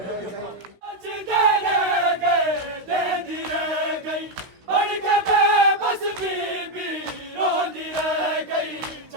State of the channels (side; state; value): left; late; 16 ms